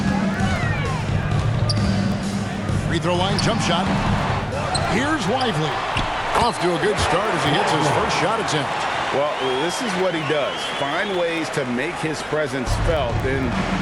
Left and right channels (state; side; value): identical; both; correlation 1.00